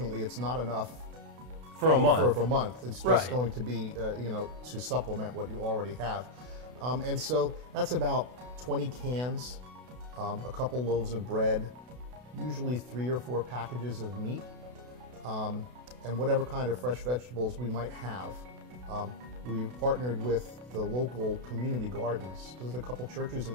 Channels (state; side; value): late; left; 32 ms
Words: it's not enough for a month. For a month. It's just going to be, to supplement what you already have. And so that's about 20 cans, a couple loaves of bread, usually 3 or 4 packages of meat, and whatever kind of fresh vegetables we might have. We've partnered with the local community gardens. There's a couple churches